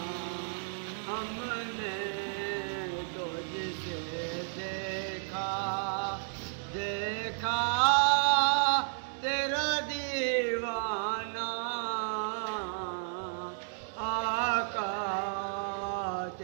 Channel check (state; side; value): silent; left; digital silence